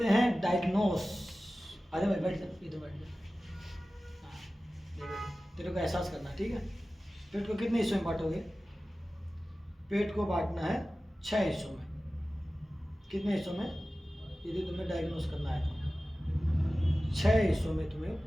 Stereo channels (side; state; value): both; normal; correlation 0.96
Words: हैं डायग्नोस। अरे भाई बैठ जा, इधर बैठ जा। हाँ, ये बैठ। तेरे को एहसास करना, ठीक है। पेट को कितने हिस्सों में बांटोगे? पेट को बांटना है 6 हिस्सों में। कितने हिस्सों में? यदि तुम्हें डायग्नोस करना है तो 6 हिस्सों में तुम्हें